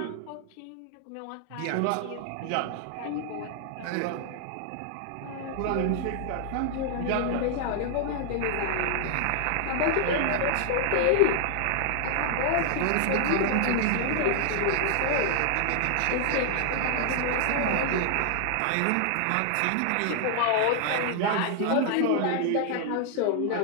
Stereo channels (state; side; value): different; both; correlation 0.00